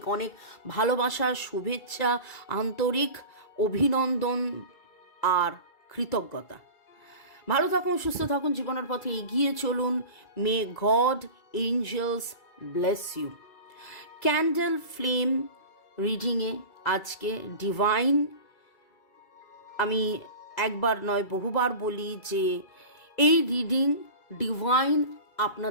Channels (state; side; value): late; right; 2.3 ms